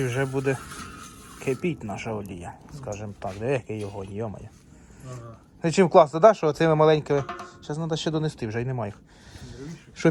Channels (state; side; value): identical; both; correlation 1.00